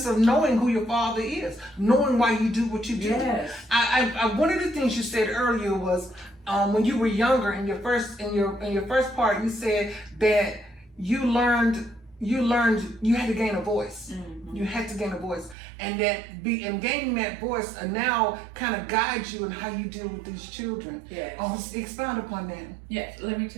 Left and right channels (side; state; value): left; drops out; at 15.6 s